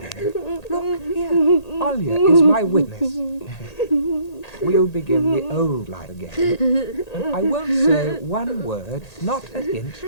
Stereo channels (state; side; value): late; right; 1.8 ms